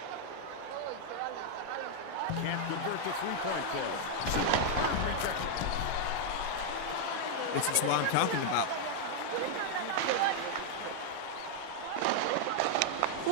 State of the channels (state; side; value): different; both; correlation 0.00